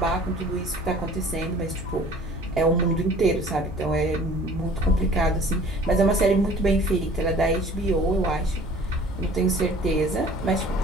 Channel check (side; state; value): both; normal; correlation 0.49